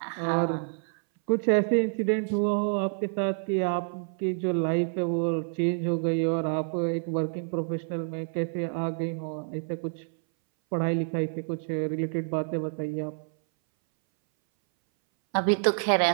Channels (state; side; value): silent; left; 59 dB below the other